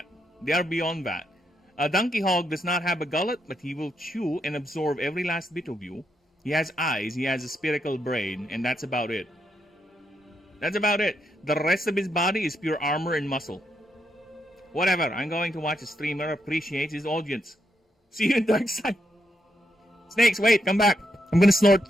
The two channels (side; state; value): both; normal; correlation 0.80